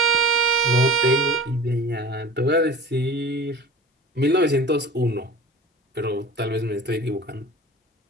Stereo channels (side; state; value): both; normal; correlation 0.37